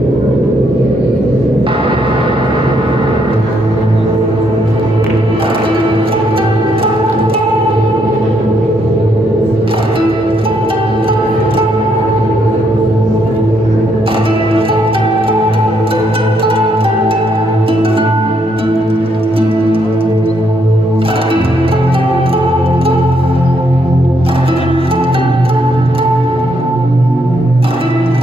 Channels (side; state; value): both; normal; correlation 0.74